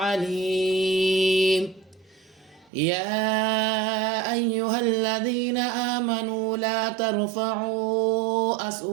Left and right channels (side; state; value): left; drops out; at 2.7 s